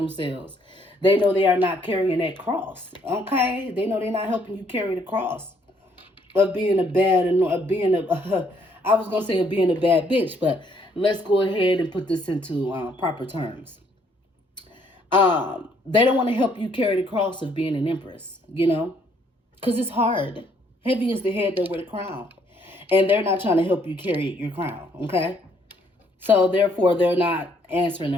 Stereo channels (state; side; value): normal; both; correlation 0.67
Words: They know they are not carrying that cross. Okay. They know they're not helping you carry the cross. Of being a bad, I was going to say of being a bad bitch, but let's go ahead and put this into proper terms. They don't want to help you carry the cross of being an Empress, you know, because it's hard. Heavy is the head that wear the crown. And they're not trying to help you carry your crown, okay? So, therefore, they're not answering